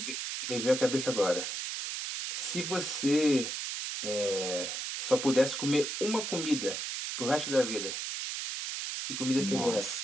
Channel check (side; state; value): right; noise; hiss, 4 dB below the sound